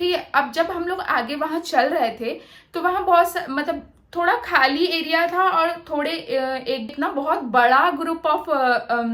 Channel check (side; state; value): both; identical; correlation 1.00